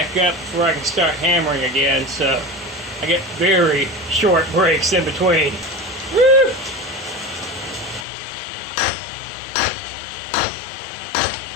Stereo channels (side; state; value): right; drops out; at 8.1 s